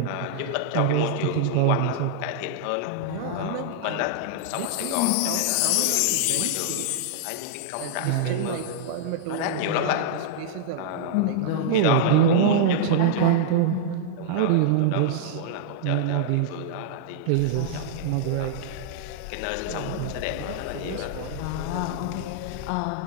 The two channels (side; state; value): both; different; correlation -0.01